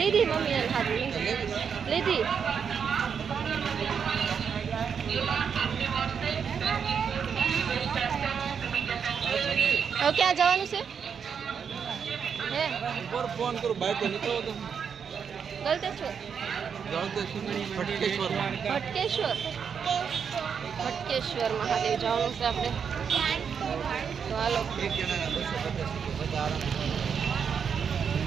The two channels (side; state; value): left; quieter; 6.9 dB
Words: મમ્મીએ હાથ લીધી. હવે ક્યાં જવાનું છે? હે ઉપર ફોન કરું બાઈક તો નીકળો તો ગલતેશ્વર ફટકેશ્વર ફટકેશ્વર મહાદેવ જવાનું છે આપણે. તો હાલો